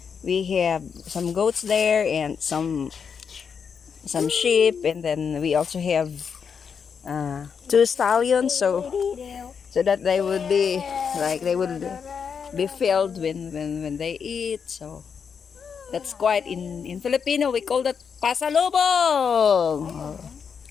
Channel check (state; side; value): quieter; right; 6.5 dB